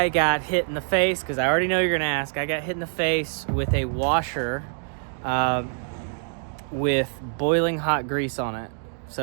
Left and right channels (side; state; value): left; silent; digital silence